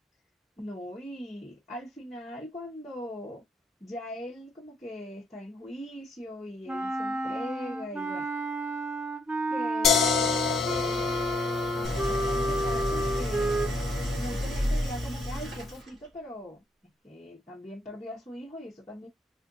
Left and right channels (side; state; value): both; normal; correlation 0.71